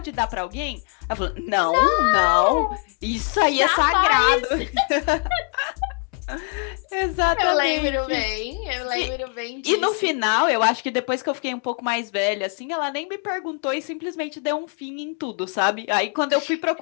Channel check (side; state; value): right; quieter; 37.3 dB